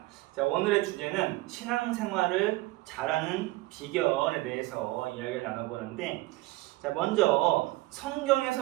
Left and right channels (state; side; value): quieter; left; 19.8 dB